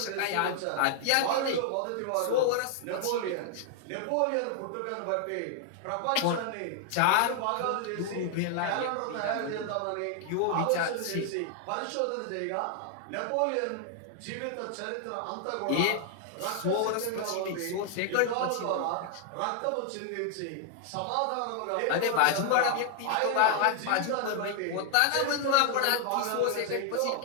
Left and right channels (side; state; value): both; different; correlation 0.00